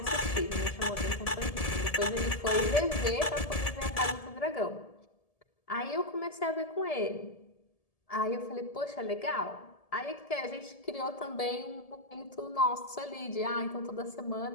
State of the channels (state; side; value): late; right; 1.7 ms